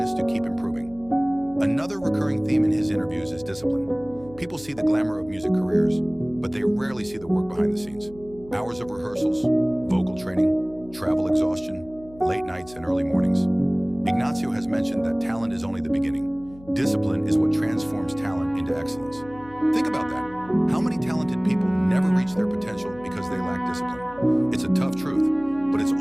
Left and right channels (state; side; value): noise; left; hum, 21 dB below the sound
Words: to keep improving. Another recurring theme in his interviews is discipline. People see the glamour of music careers, but they rarely see the work behind the scenes. Hours of rehearsals, vocal training, travel exhaustion, late nights and early mornings. Ignazio has mentioned that talent is only the beginning. Discipline is what transforms talent into excellence. Think about that. How many talented people never reach their potential because they lack discipline? It's a tough truth, but it's